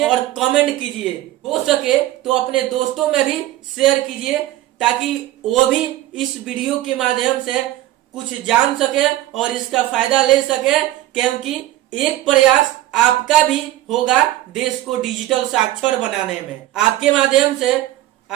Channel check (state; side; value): quieter; left; 15.0 dB